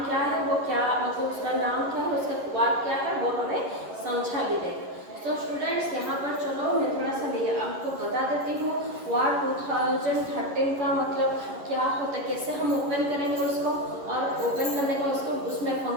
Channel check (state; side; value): late; left; 11 ms